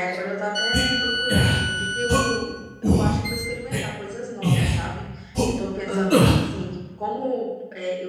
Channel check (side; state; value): both; identical; correlation 1.00